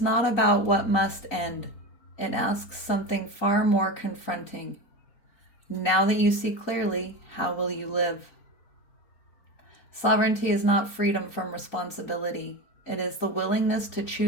about what must end. It asks something far more confronting. Now that you see clearly, how will you live? Sovereignty is not freedom from responsibility. It is the willingness to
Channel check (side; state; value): right; late; 4.4 ms